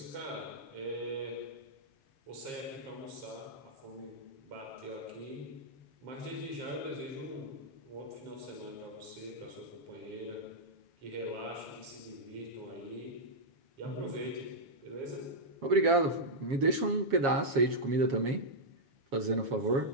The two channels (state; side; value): late; left; 7.3 ms